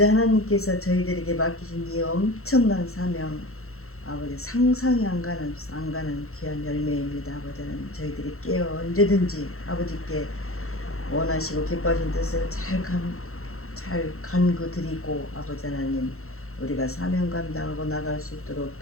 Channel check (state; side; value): late; right; 0.63 ms